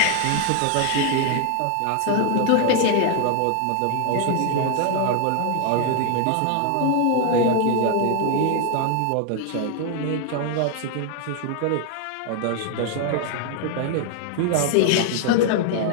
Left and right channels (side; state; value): both; different; correlation 0.00